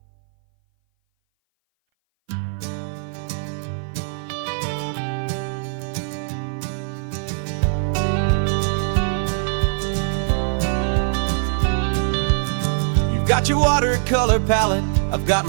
You've got your watercolor palette, I've got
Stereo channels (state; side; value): silent; left; 59 dB below the other